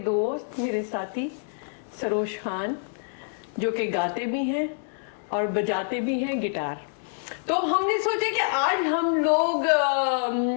दोस्त, मेरे साथी सरोज खान, जो कि गाते भी हैं और बजाते भी हैं गिटार। तो हमने सोचा कि आज हम लोग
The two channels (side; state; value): right; silent; 61 dB below the other